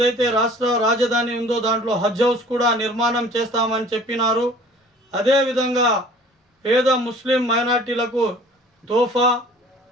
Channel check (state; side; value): normal; both; correlation 0.49